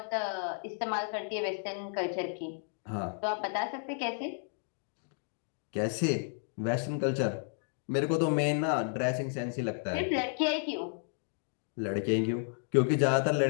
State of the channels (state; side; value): silent; right; digital silence